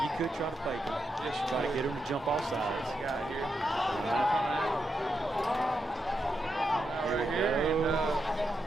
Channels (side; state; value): both; normal; correlation 0.85